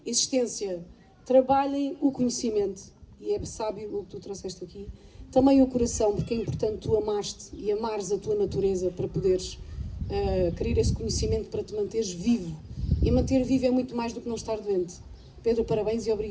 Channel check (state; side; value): identical; both; correlation 1.00